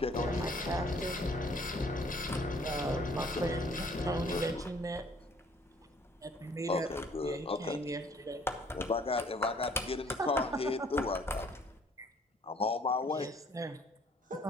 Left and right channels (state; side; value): normal; both; correlation 0.59